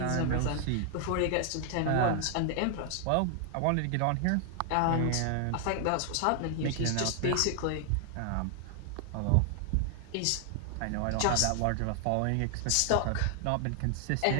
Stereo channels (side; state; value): both; different; correlation 0.00